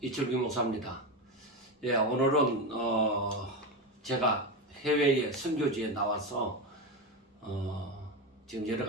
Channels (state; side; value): normal; both; correlation 0.16